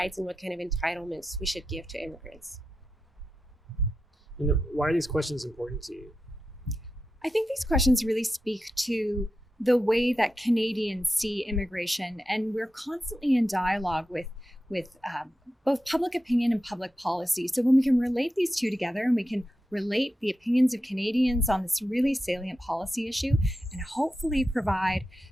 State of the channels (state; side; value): normal; both; correlation 0.90